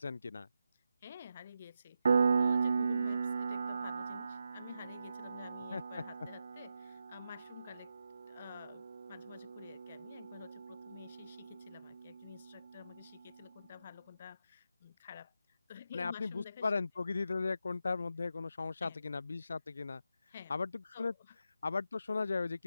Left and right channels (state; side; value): inverted; both; correlation -0.88